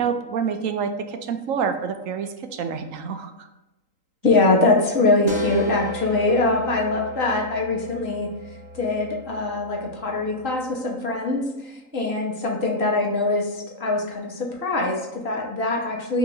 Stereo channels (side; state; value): left; late; 3.8 ms